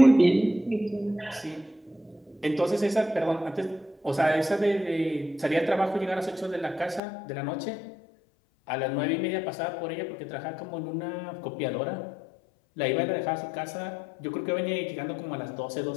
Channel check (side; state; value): right; drops out; at 7.0 s